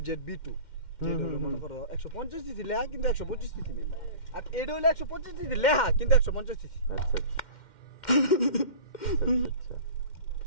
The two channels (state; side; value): late; right; 2.1 ms